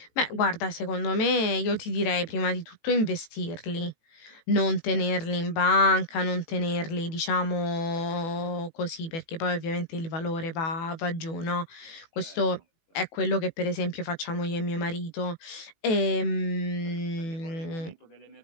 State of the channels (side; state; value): right; late; 18 ms